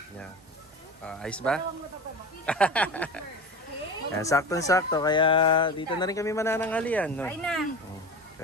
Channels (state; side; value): normal; both; correlation 0.29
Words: niya. Ayos ba? Ayan, saktong-sakto kaya dito na rin kami manananghalian no.